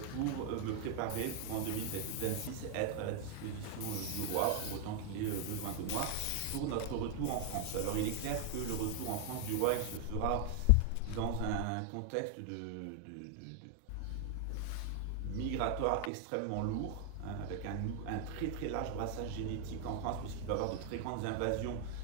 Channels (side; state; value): both; different; correlation 0.00